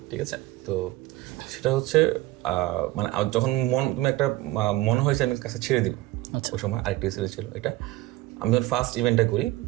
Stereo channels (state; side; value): quieter; left; 18.3 dB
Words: ঠিক আছে। তো সেটা হচ্ছে মানে যখন তুমি একটা মনে হয়েছে আমি কাছে ছেড়ে দিব, ওই সময় আরেকটা ইনসিডেন্ট ছিল এটা। আমি যখন ফার্স্ট ইভেন্টটা করি,